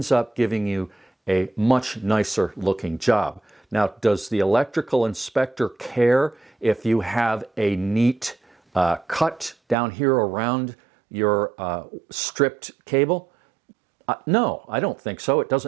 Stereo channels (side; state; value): left; drops out; at 9.8 s